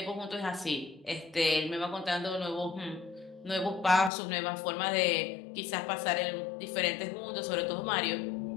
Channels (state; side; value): drops out; right; at 4.1 s